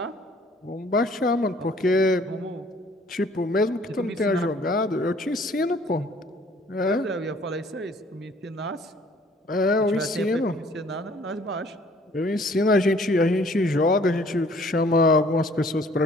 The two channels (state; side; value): normal; both; correlation 0.57